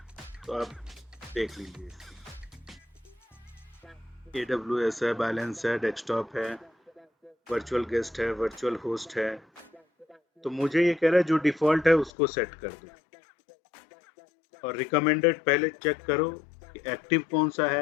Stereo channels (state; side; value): drops out; right; at 12.1 s